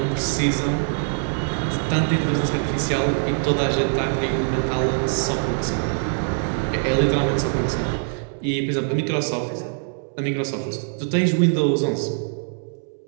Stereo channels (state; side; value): silent; left; 60 dB below the other